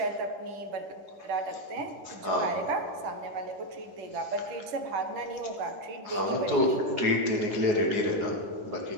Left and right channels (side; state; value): left; late; 10 ms